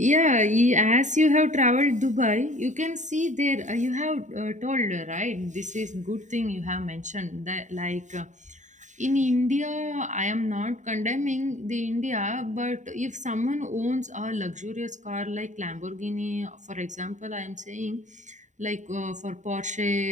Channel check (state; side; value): late; left; 0.35 ms